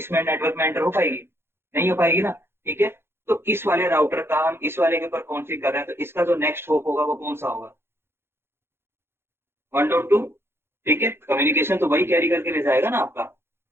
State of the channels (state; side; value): late; left; 0.11 ms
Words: नेटवर्क में एंटर हो पाएगी, नहीं हो पाएगी ना। ठीक है, तो इस वाले राउटर का हम इस वाले के ऊपर कॉन्फ़िग कर रहे हैं, तो इसका जो नेक्स्ट होप होगा वो कौन सा होगा, 1.2। ठीक है, कम्युनिकेशन तो वही कैरी करके ले जाएगा ना आपका।